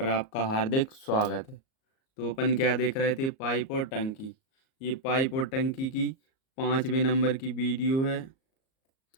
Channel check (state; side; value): late; right; 38 ms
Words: आपका हार्दिक स्वागत है। तो अपन क्या देख रहे थे, पाइप और टंकी। ये पाइप और टंकी की 5वें नंबर की वीडियो है।